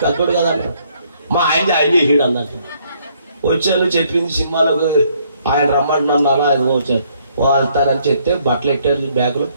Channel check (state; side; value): inverted; both; correlation -0.68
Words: పెద్దోడు కదంట. మా ఆయన చేసాడు అన్నట్టు. వచ్చాను చెప్పింది సినిమాలోకి ఆయన రమ్మంటున్నాను. అలా అది వచ్చాను వెళ్తానని చెప్తే బట్టలు ఎట్టారు బ్యాగులో.